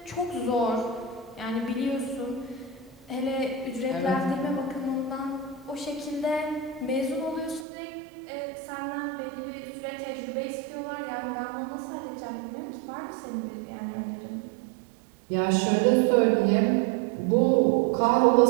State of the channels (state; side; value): drops out; left; at 7.7 s